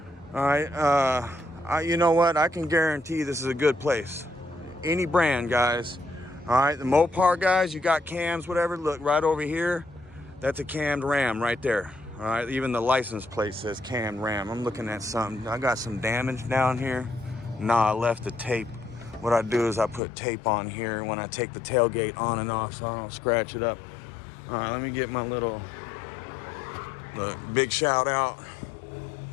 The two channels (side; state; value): right; drops out; at 20.0 s